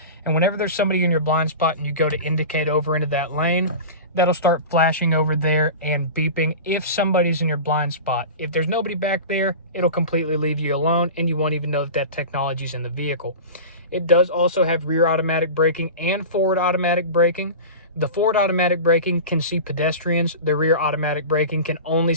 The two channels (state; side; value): inverted; both; correlation -0.31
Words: And whenever there's somebody in your blind spot and you go to indicate over into that lane, that'll start flashing over there and beeping if somebody's in your blind spot. If there's nobody back there, it'll completely leave you alone and you won't even know that technology's in the vehicle. It does also have rear automatic braking and forward automatic braking. The forward automatic braking can see pedestrians. The rear automatic braking can only